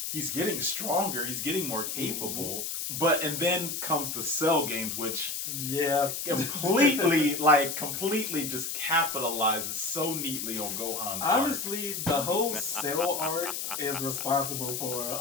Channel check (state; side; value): noise; left; hiss, 4 dB below the sound